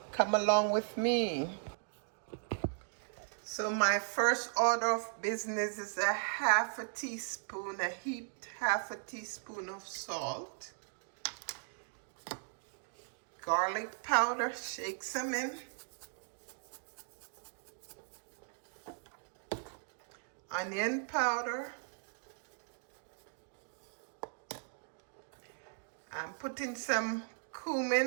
Come along with me. So my first order of business is a half a teaspoon, a heaped half a teaspoon of salt, garlic powder, shake some in, onion powder. I'm putting some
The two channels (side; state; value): left; silent; digital silence